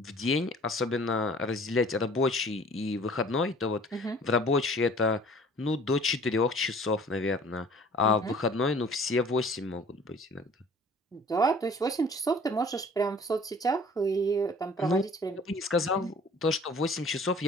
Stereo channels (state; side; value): normal; both; correlation 0.50